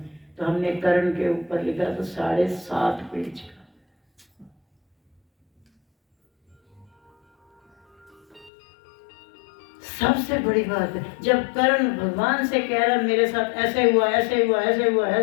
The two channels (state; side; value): drops out; right; at 8.5 s